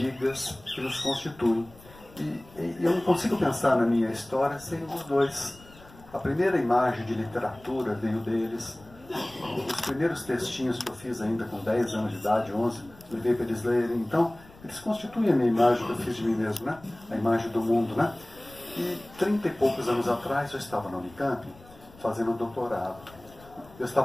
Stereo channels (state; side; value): noise; left; rumble, 23 dB below the sound